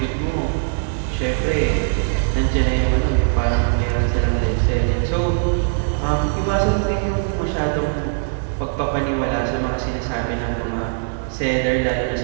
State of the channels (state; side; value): silent; left; digital silence